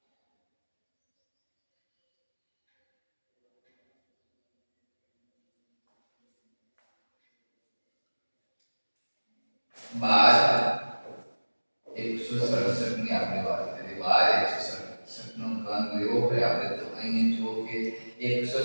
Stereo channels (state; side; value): inverted; both; correlation -1.00